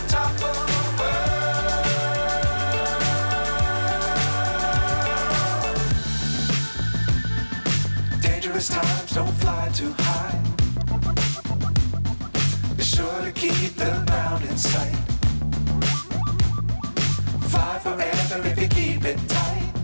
Times don't fly too high. Be sure to keep the ground in sight. Fly forever if you keep it tight.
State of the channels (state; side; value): inverted; both; correlation -1.00